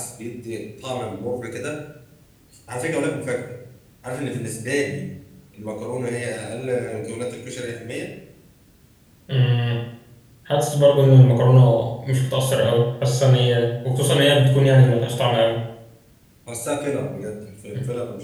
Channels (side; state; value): both; identical; correlation 1.00